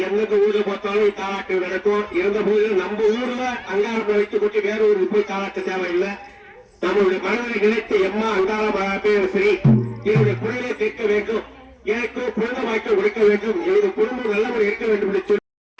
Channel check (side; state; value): both; identical; correlation 1.00